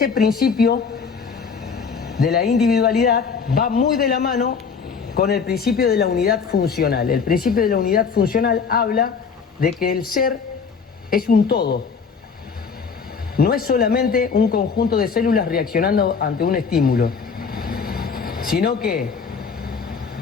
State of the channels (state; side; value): quieter; right; 5.7 dB